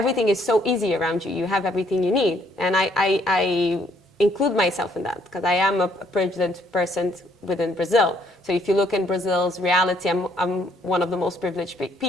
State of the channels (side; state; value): both; normal; correlation 0.67